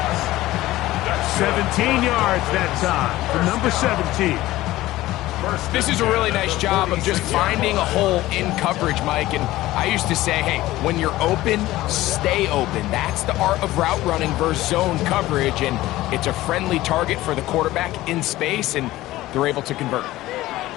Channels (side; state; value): right; quieter; 16.7 dB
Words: 17 yards that time for number 17. This is a really nice job of just finding a hole in coverage, Mike. And I used to say, hey, when you're open, stay open. That's the art of route running versus zone coverage. And it's a friendly target for the quarterback in space, and they're able to convert.